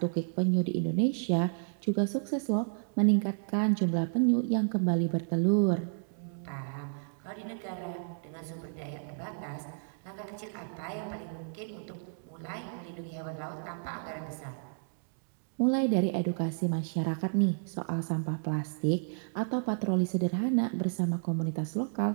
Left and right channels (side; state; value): left; silent; digital silence